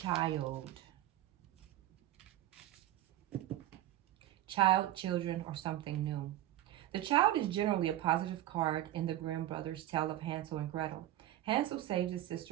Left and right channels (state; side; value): quieter; left; 13.9 dB